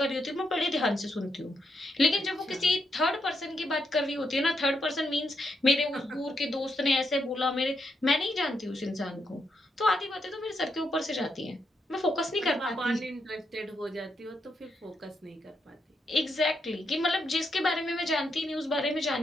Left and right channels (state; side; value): normal; both; correlation 0.80